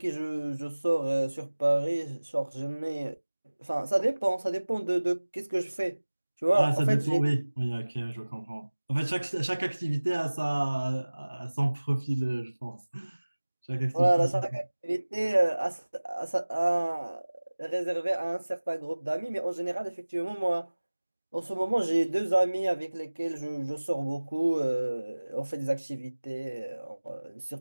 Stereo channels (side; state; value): both; inverted; correlation -1.00